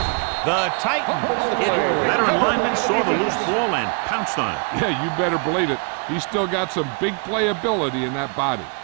The Titans. Veteran lineman saw the loose ball and pounced on it. Yeah, you better believe it. He's still got some big playability in that body.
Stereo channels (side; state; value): left; quieter; 37.3 dB